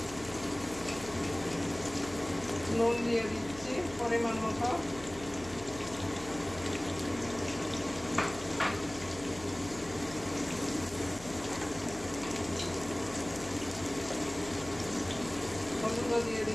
নুন দিয়ে দিচ্ছি পরিমাণ মতো। হলুদ দিয়ে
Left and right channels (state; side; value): noise; left; hum, 16 dB below the sound